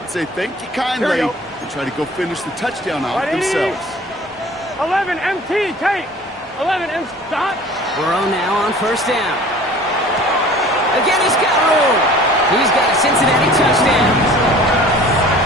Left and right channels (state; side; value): normal; both; correlation 0.46